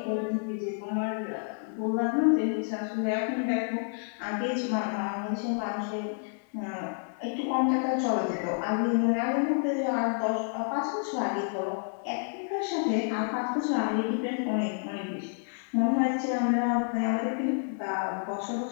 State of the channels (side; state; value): right; silent; 58 dB below the other